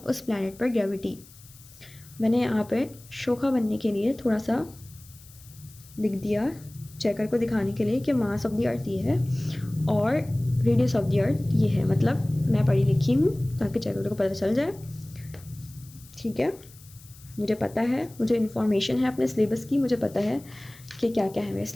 प्लैनेट पर ग्रेविटी। मैंने यहाँ पे शोखा बनने के लिए थोड़ा सा लिख दिया चेकर को दिखाने के लिए कि मास ऑफ द अर्थ ये है और रेडियस ऑफ द अर्थ ये है, मतलब मैं पढ़ी लिखी हूँ ताकि चेकर को पता चल जाए, ठीक है। मुझे पता है, मुझे इन्फॉर्मेशन है अपने सिलेबस की, मुझे पता है कि क्या क्या है मेरे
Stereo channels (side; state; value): left; noise; hiss, 23 dB below the sound